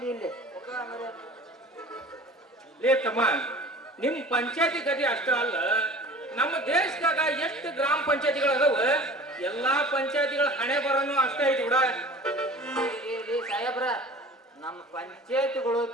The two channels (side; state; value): both; normal; correlation 0.42